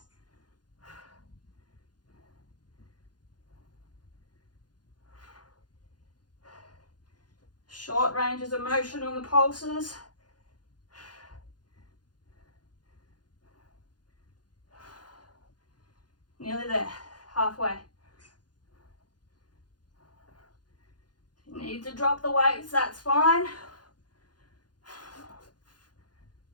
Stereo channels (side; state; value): right; late; 0.70 ms